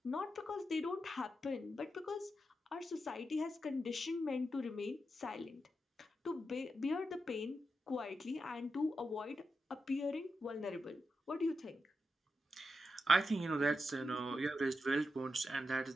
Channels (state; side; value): normal; both; correlation 0.87